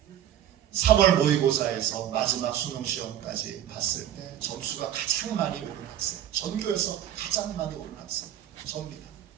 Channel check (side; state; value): left; quieter; 11.0 dB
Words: 3월 모의고사에서 마지막 수능 시험까지 봤을 때 점수가 가장 많이 오른 학생, 전교에서 가장 많이 오른 학생, 저입니다.